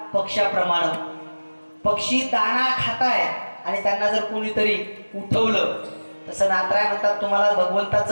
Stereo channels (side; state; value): both; inverted; correlation -1.00